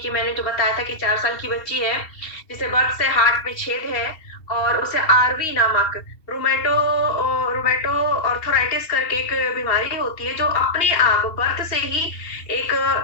मैंने जो बताया था कि 4 साल की बच्ची है जिसे बर्थ से हार्ट में छेद है और उसे आरवी नामक रोमेटो ऑर्थराइटिस करके एक बीमारी होती है जो अपने आप बर्थ से ही एक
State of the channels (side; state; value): right; late; 2.7 ms